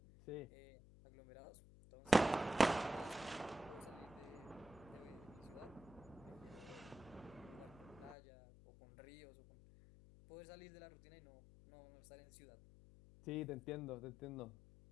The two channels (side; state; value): left; noise; hum, 19 dB below the sound